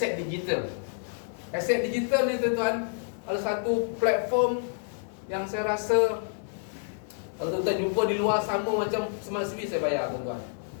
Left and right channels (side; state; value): right; silent; 59 dB below the other